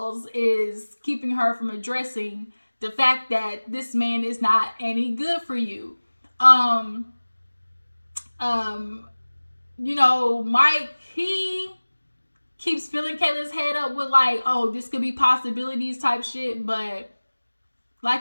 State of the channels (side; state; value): both; inverted; correlation -1.00